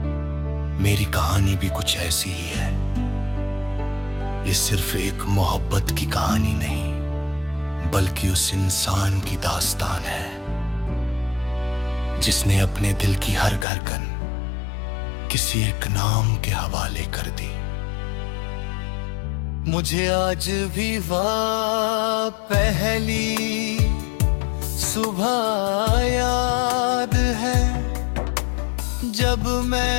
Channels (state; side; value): drops out; right; at 13.7 s